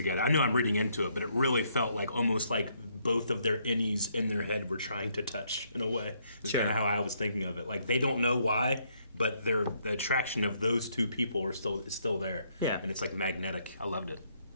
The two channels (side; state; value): both; inverted; correlation -0.71